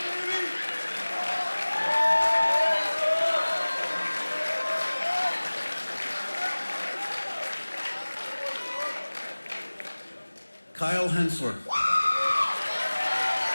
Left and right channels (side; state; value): both; inverted; correlation -1.00